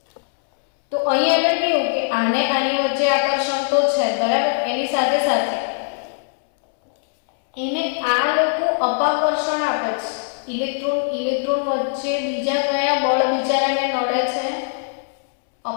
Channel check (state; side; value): silent; right; 65 dB below the other